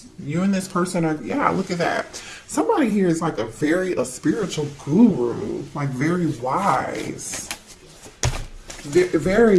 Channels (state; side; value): identical; both; correlation 1.00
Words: You and this person are, yeah, look at that. Somebody here is like a spiritual guru, like very wise.